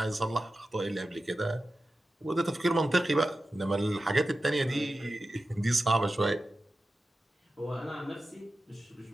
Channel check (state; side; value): normal; both; correlation 0.93